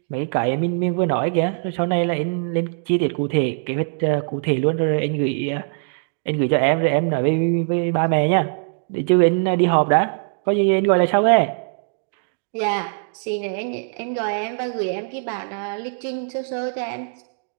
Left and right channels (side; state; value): left; silent; digital silence